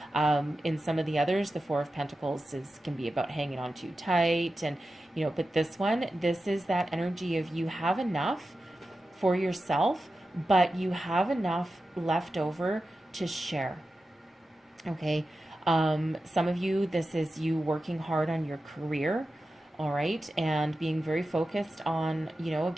In some of the others, the Four of Pentacles can be about hanging on too tight, and you know, but this one, this is that energy of you have enough for yourself, but you have enough left over to share. Okay, some of you, this is you working hard on your career. All right, and being very focused on, you know,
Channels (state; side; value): normal; both; correlation 0.92